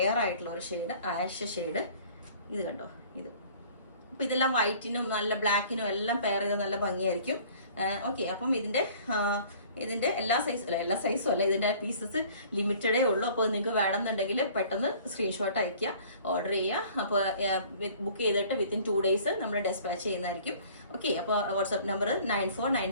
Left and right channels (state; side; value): inverted; both; correlation -0.51